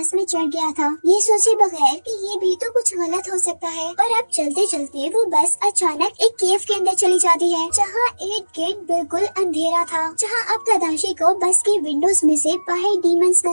में चढ़ गया था, ये सोचे बगैर कि ये भी तो कुछ गलत हो सकता है। और अब चलते चलते वो बस अचानक एक केव के अंदर चली जाती है, जहाँ इर्द गिर्द बिल्कुल अंधेरा था, जहाँ अब तदाशी को बस की विंडोज में से बाहर डीमंस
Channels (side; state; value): both; inverted; correlation -1.00